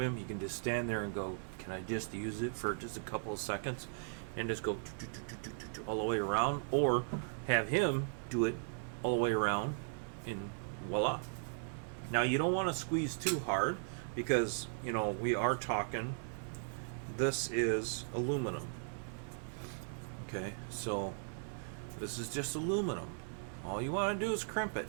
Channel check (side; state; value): left; silent; digital silence